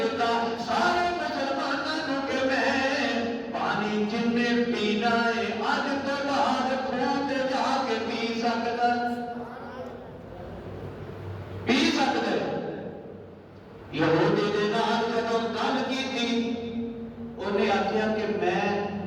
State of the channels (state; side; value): identical; both; correlation 1.00